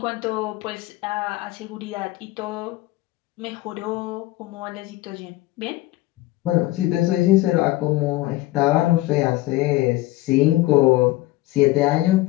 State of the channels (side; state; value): right; quieter; 18.0 dB